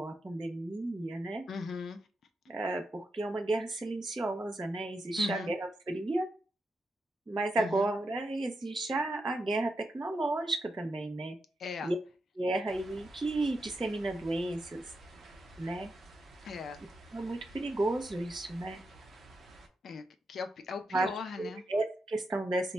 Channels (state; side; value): normal; both; correlation 0.85